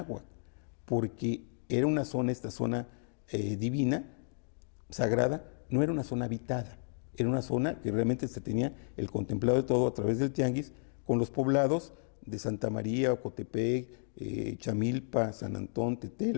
porque era una zona, esta zona divina, sagrada, no era una zona habitada, era una zona que realmente se tenía el contemplado de todo a través del tianguis, con los poblados de Santa María, Ocotepec, Chamilpa, San Antón,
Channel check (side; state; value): right; silent; digital silence